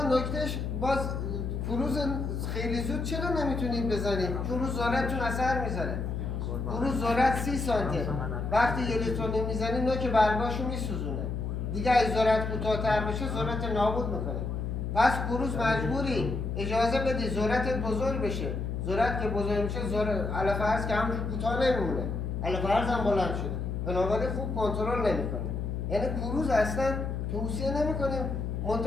نکتهش باز کروز خیلی زود چرا نمیتونید بزنید؟ کروز ذرتتون اثر میذاره. کروز ذرت 30 سانته. وقتی یه لیتر میزنید نوک برگاشو میسوزونه. دیگه از ذرت کوتاه‌تر بشه ذرت نابود میکنه. پس کروز مجبوری اجازه بدی ذرتت بزرگ بشه. ذرت که بزرگ میشه علف ارز که همونجور کوتاه نمیمونه. علف ارز هم بلند شده. بنابراین خوب کنترل نمیکنه. یعنی کروز اصلا توصیه نمیکنیم.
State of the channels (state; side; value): noise; left; hum, 3 dB below the sound